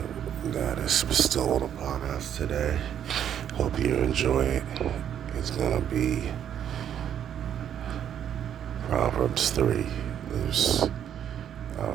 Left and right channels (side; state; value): left; quieter; 9.6 dB